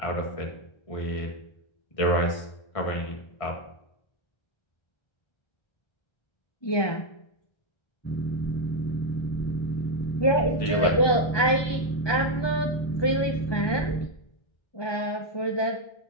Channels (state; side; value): late; right; 1.2 ms